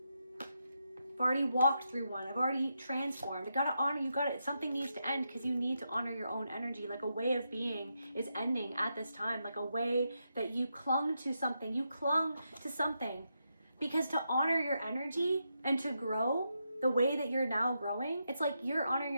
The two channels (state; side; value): inverted; both; correlation -0.84